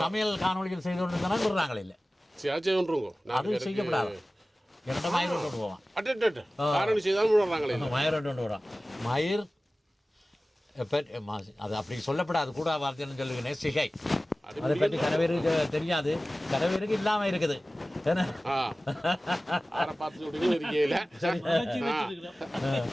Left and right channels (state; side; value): normal; both; correlation 0.97